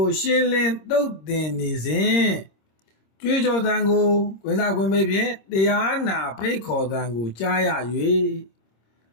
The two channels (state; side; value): late; right; 26 ms